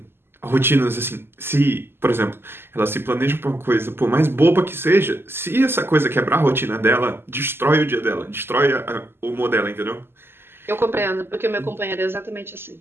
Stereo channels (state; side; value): late; left; 0.11 ms